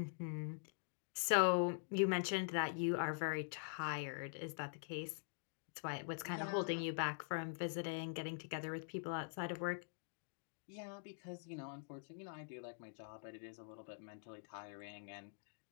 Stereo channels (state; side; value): silent; right; digital silence